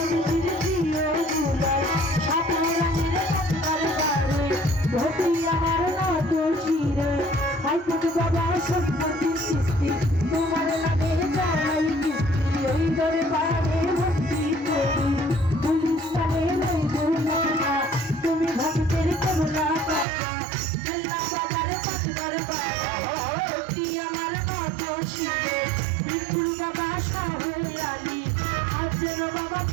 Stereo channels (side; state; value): left; drops out; at 20.1 s